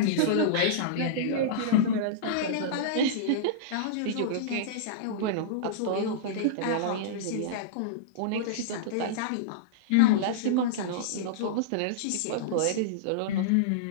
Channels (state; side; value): different; both; correlation -0.03